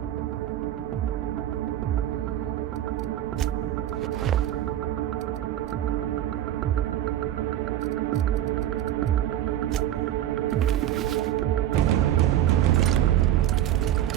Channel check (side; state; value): left; quieter; 12.2 dB